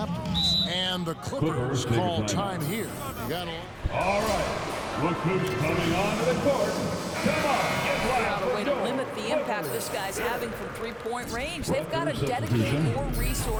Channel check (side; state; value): both; identical; correlation 1.00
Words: And the Clippers call time here. All right, look who's coming onto the court. Come on, get Got a way to loud. limit the impact this guy's having from 3-point range. They've got to dedicate more